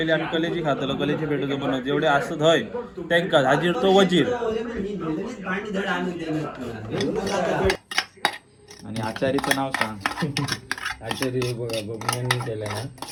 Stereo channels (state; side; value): identical; both; correlation 1.00